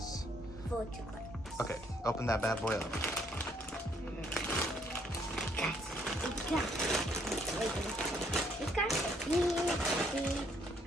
4 chocolates. Okay, open that bad boy up. It's got the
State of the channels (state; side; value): normal; both; correlation 0.67